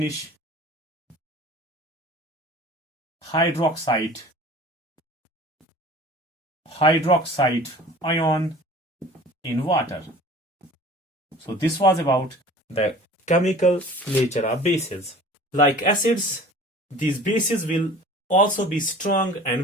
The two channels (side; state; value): both; normal; correlation 0.44